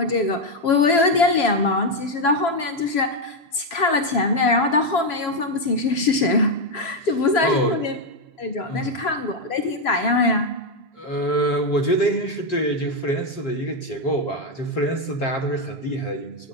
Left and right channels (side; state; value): right; late; 3.0 ms